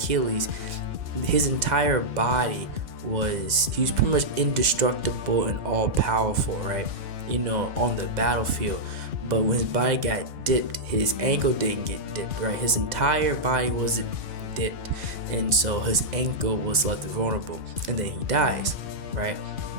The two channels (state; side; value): late; left; 2.0 ms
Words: his entire body he was pretty much indestructible and all powerful, right? On the battlefield. But when his body got dipped, his ankle didn't get dipped, right? His entire body wasn't dipped, and so his ankle was left vulnerable, and then he dies, right?